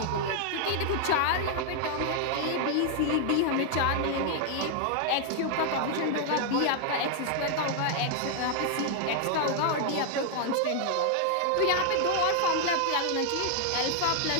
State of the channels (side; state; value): both; different; correlation 0.00